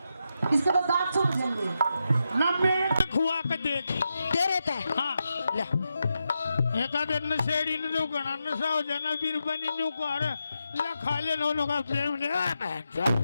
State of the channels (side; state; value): both; inverted; correlation -0.87